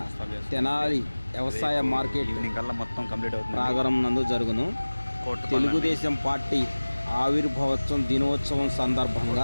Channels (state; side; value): inverted; both; correlation -1.00